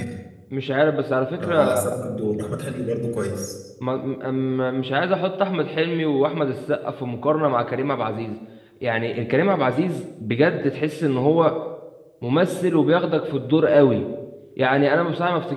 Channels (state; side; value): identical; both; correlation 1.00